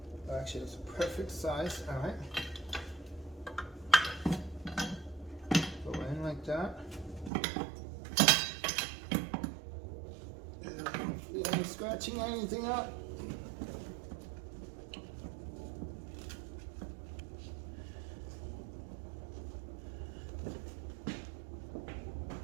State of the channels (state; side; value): drops out; left; at 7.3 s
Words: Actually, that's a perfect size. All right. Go in like that. Hopefully, I'm scratching anything up.